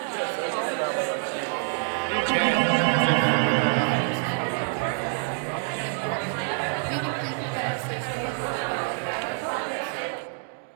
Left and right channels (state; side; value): silent; left; 57 dB below the other